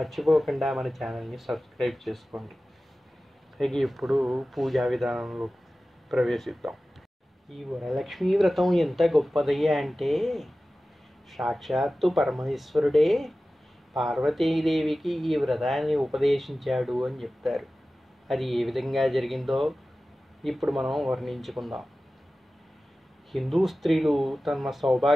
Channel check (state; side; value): normal; both; correlation 0.96